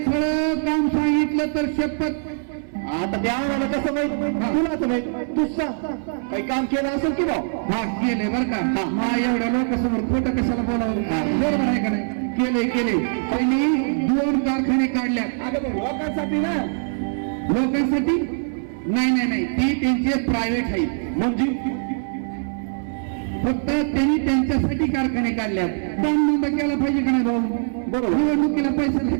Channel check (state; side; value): silent; left; 58 dB below the other